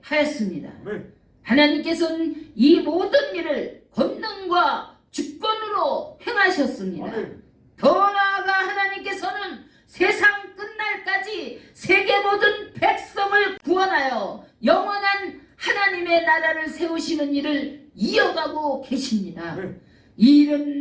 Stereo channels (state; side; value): identical; both; correlation 1.00